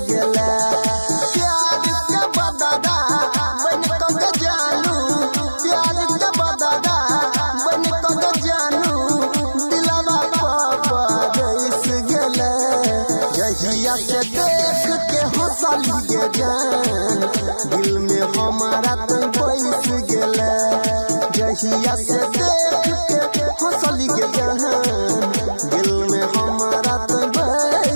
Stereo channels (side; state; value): both; inverted; correlation -1.00